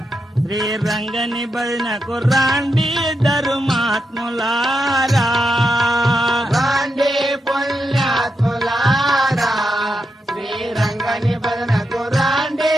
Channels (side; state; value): both; normal; correlation 0.85